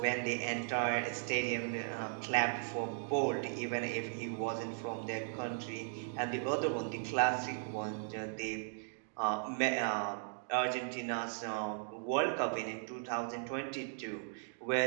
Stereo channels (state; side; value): silent; left; digital silence